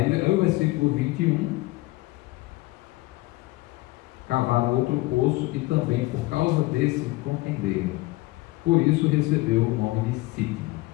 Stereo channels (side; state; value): right; quieter; 20.4 dB